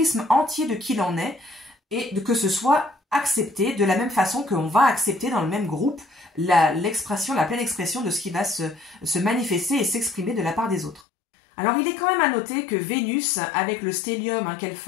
entier de qui l'on est et que ce soit accepté de la même façon qu'on va accepter dans le même groupe la pleine expression de ce qui va se manifester et s'exprimer de la part des autres. Alors il est quand même à noter que Vénus, avec le stellium qu'elle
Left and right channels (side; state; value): right; drops out; at 11.0 s